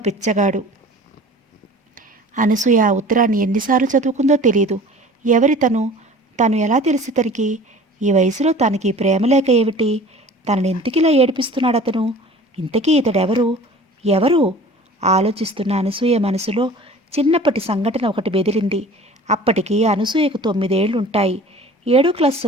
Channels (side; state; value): both; normal; correlation 0.44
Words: పిచ్చగాడు. అనసూయ ఆ ఉత్తరాన్ని ఎన్నిసార్లు చదువుకుందో తెలియదు. ఎవరి తను ఎలా తెలిసి తనకి? ఈ వయసులో తనకి ప్రేమ లేక ఏమిటి? తనని ఎందుకిలా ఏడిపిస్తున్నాడు అతను? ఇంతకీ ఇతడెవరు? ఎవరు? ఆలోచిస్తున్న అనసూయ మనసులో చిన్నప్పటి సంఘటన ఒకటి బెదిరింది. అప్పటికి అనసూయకు 9 ఏళ్లుంటాయి. 7వ క్లాస్